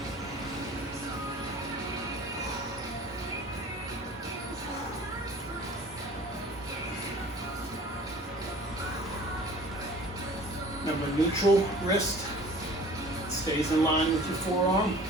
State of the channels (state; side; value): normal; both; correlation 0.46